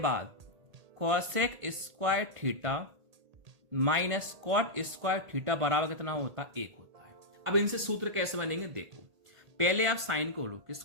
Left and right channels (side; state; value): left; late; 1.8 ms